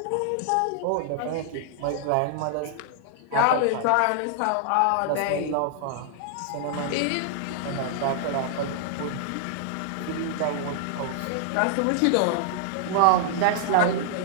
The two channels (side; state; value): both; different; correlation -0.01